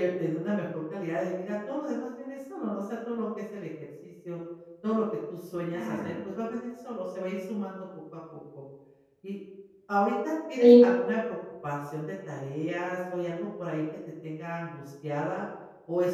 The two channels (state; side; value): identical; both; correlation 1.00